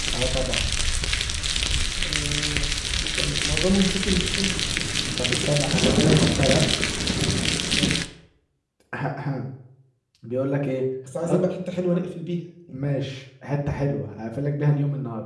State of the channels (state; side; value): identical; both; correlation 1.00